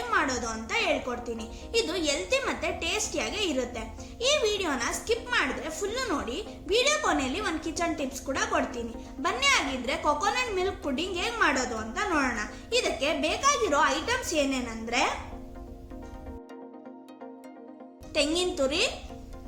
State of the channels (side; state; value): both; identical; correlation 1.00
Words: ಮಾಡೋದು ಅಂತ ಹೇಳ್ಕೊಡ್ತೀನಿ. ಇದು ಹೆಲ್ತಿ ಮತ್ತೆ ಟೇಸ್ಟಿಯಾಗಿ ಇರುತ್ತೆ. ಈ ವಿಡಿಯೋನ ಸ್ಕಿಪ್ ಮಾಡಿದ್ರೆ ಫುಲ್ಲು ನೋಡಿ. ವಿಡಿಯೋ ಕೊನೆಯಲ್ಲಿ ಒಂದು ಕಿಚನ್ ಟಿಪ್ಸ್ ಕೂಡ ಕೊಡ್ತೀನಿ. ಬನ್ನಿ ಆಗಿದ್ರೆ ಕೊಕೊನಟ್ ಮಿಲ್ಕ್ ಪುಡ್ಡಿಂಗ್ ಹೇಗೆ ಮಾಡೋದು ಅಂತ ನೋಡೋಣ. ಇದಕ್ಕೆ ಬೇಕಾಗಿರೋ ಐಟಮ್ಸ್ ಏನೇನಂದ್ರೆ ತೆಂಗಿನ ತುರಿ,